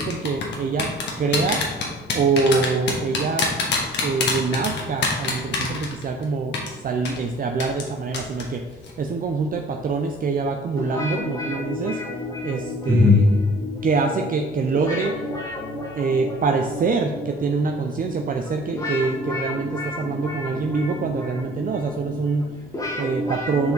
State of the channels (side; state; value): both; normal; correlation 0.49